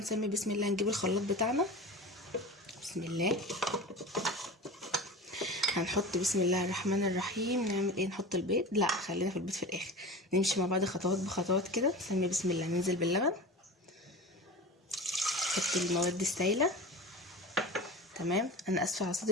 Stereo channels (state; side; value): normal; both; correlation 0.32